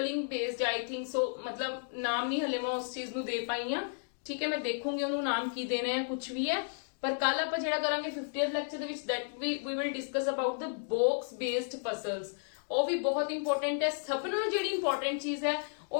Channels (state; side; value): silent; right; digital silence